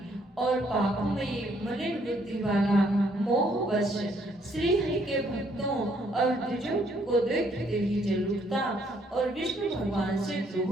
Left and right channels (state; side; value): normal; both; correlation 0.68